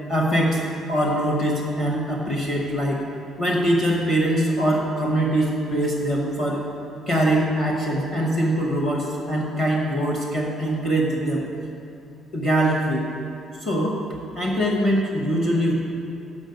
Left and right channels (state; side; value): normal; both; correlation 0.70